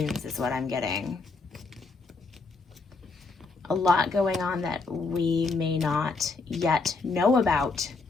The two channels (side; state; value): right; quieter; 4.0 dB